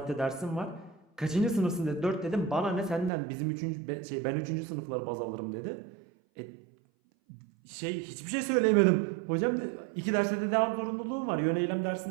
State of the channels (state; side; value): drops out; left; at 3.1 s